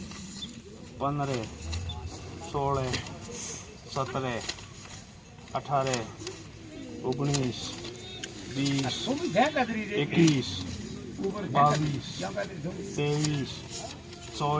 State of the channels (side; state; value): both; identical; correlation 1.00